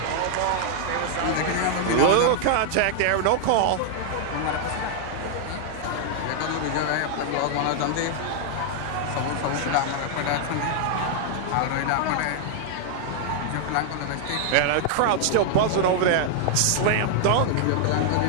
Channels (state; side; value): different; both; correlation 0.00